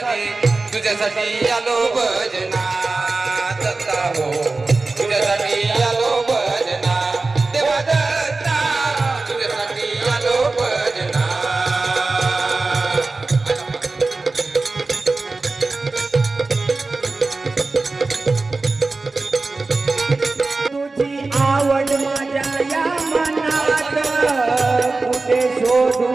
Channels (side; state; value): left; quieter; 3.6 dB